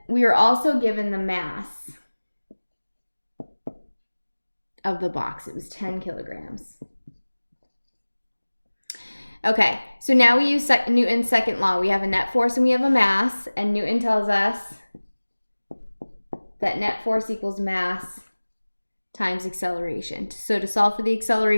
we were also given the mass of the box. It was 10 kilograms. Okay, so now we use Newton's second law. We have a net force and we have a mass, and Newton tells us that net force equals mass times acceleration. So to solve for the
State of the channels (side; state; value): both; inverted; correlation -1.00